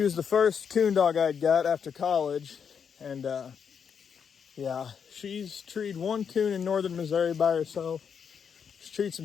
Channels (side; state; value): right; quieter; 7.0 dB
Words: was the first coon dog I'd got after college, and yeah, she's treed 1 coon in northern Missouri by herself. She's treed some